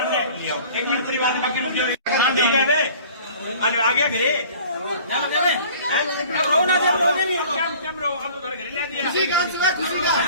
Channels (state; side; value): inverted; both; correlation -0.48